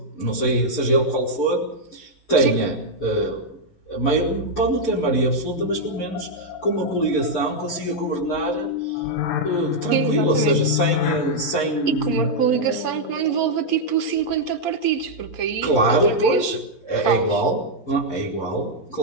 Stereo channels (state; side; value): late; right; 11 ms